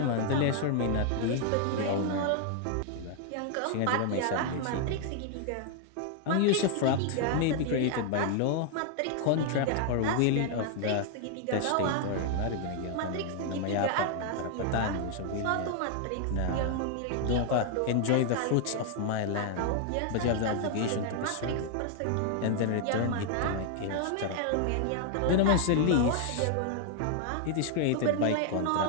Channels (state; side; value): different; both; correlation 0.00